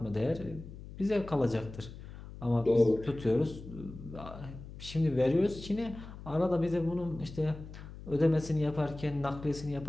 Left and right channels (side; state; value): left; noise; hum, 14 dB below the sound